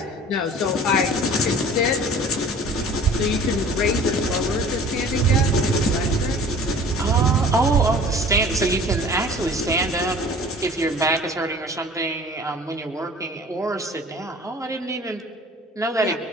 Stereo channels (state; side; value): normal; both; correlation 0.46